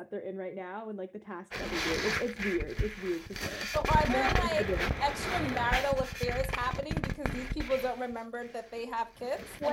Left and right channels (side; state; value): both; identical; correlation 1.00